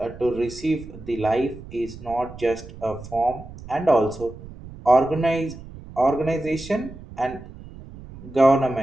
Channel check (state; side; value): noise; right; rumble, 16 dB below the sound